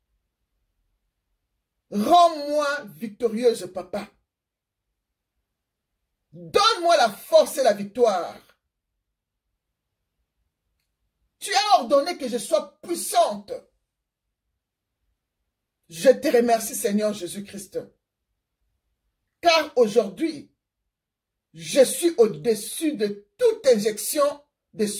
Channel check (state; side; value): identical; both; correlation 1.00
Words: rends-moi victorieuse, Papa. Donne-moi la force et la victoire. Tu as ordonné que je sois puissante. Je te remercie, Seigneur Jésus-Christ. Car aujourd'hui, je suis au-dessus de toute injection de